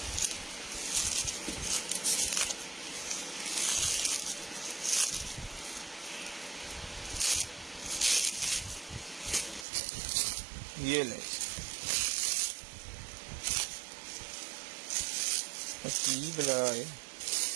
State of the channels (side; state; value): left; drops out; at 9.7 s